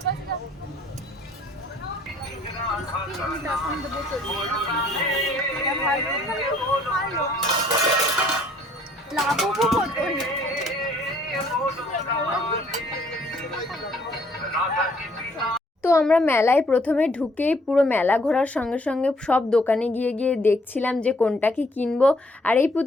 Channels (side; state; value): both; normal; correlation 0.62